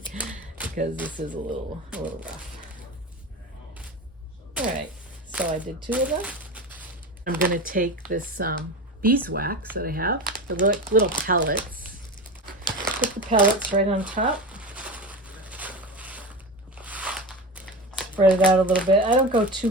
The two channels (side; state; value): both; normal; correlation 0.25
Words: because this is a little rough. All right, so I did 2 of them. I'm going to take this beeswax that I have, the little pellets, put the pellets right on top. Spread it out a little bit. I don't go too